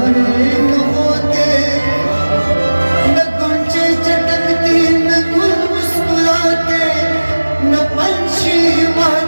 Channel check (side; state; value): both; inverted; correlation -1.00